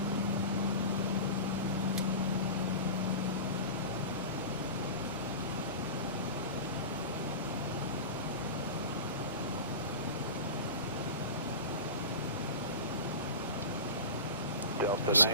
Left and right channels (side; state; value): both; inverted; correlation -0.30